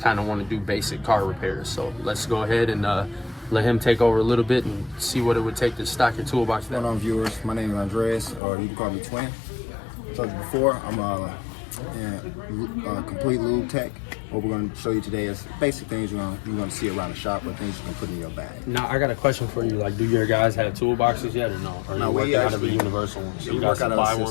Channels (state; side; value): drops out; right; at 8.4 s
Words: kind of want to do basic car repairs. So let's go ahead and let him take over a little bit and see what it would take to stock your toolbox. What's going on, viewers? My name is Andreas, or you can call me Twin. I told you before, I'm a complete lube tech. What we're going to show you today is basic things you're going to see around the shop, or things you can put in your bag. Now, I got a question for you. Like, do your guys have toolboxes yet, or no? Or no, we working out of a universal one? So we work out of a